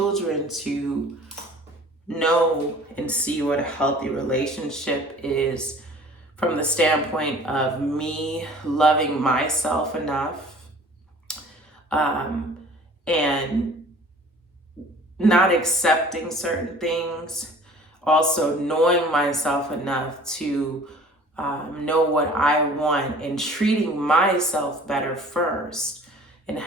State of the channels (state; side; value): normal; both; correlation 0.49